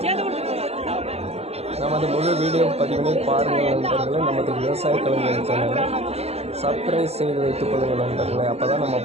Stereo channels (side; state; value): left; late; 0.30 ms